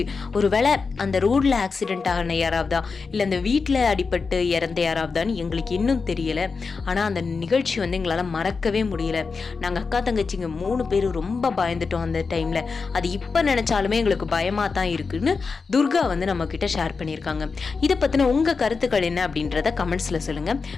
ஒரு வேளை அந்த ரோடில் ஆக்சிடென்ட் ஆகின யாராவதா இல்லை அந்த வீட்டில் அடிபட்டு இறந்த யாராவதான்னு எங்களுக்கு இன்னும் தெரியலை. ஆனால் அந்த நிகழ்ச்சி வந்து எங்களால் மறக்கவே முடியல. நாங்கள் அக்கா தங்கச்சிங்க 3 பேரும் ரொம்ப பயந்துட்டோம் அந்த டைமில். அது இப்போ நினச்சாலுமே எங்களுக்கு பயமாக தான் இருக்குன்னு துர்கா வந்து நம்ம கிட்ட ஷேர் பண்ணியிருக்காங்க. இதை பற்றின உங்கள் கருத்துக்கள் என்ன அப்படின்றத கமெண்ட்ஸில் சொல்லுங்கள்.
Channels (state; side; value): quieter; right; 4.8 dB